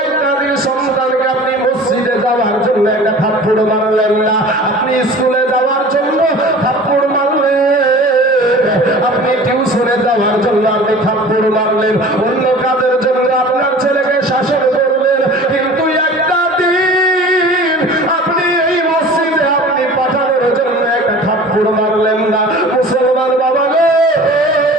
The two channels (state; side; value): normal; both; correlation 0.42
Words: একটা দিন সন্তানকে আপনি মসজিদে যাওয়ার জন্য একটা থাপ্পড় মারলেন না, আপনি স্কুলে যাওয়ার জন্য থাপ্পড় মারলেন, আপনি টিউশনে যাওয়ার জন্য আপনি থাপ্পড় মারলেন, অন্য কাজের জন্য আপনার ছেলেকে শাসন করলেন, কিন্তু একটা দিন আপনি এই মসজিদে আপনি পাঠানোর জন্য একটা থাপ্পড় মারলেন না। মুসলমান বাবা গো,